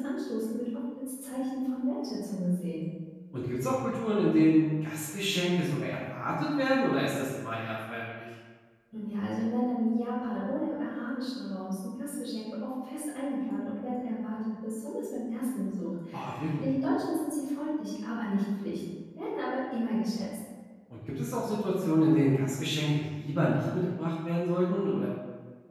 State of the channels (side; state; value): both; identical; correlation 1.00